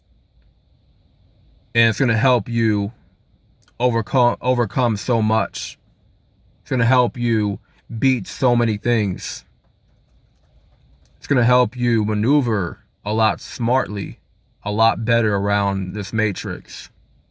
And it's going to help you overcome so much. It's going to help you beat so many things. It's going to help you maneuver a lot smartly, a lot better around this matrix.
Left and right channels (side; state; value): both; identical; correlation 1.00